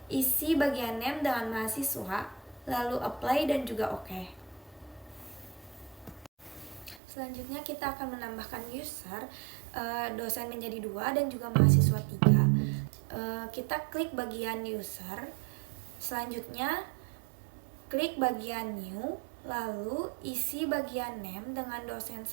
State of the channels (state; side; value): drops out; left; at 7.0 s